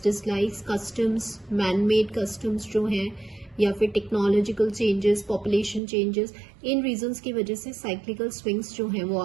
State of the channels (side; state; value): left; drops out; at 5.8 s